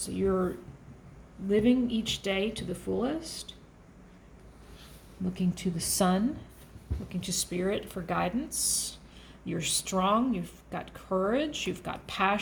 you're living each day to the fullest, looking to the sun, looking to spirit for guidance. You're strong. You've got courage. You've got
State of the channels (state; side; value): identical; both; correlation 1.00